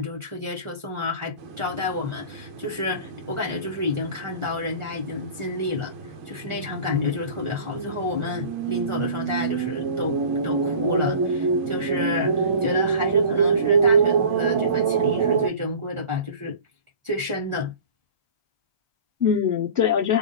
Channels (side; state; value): left; late; 1.4 ms